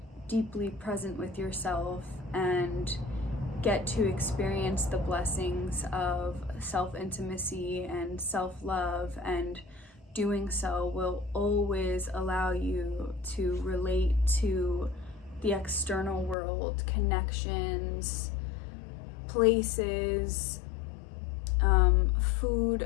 deeply present with yourself and get to experience the blessings of self-intimacy and self-love, and doing so will always allow you to relate to the external world, connections, places,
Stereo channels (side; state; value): right; drops out; at 16.4 s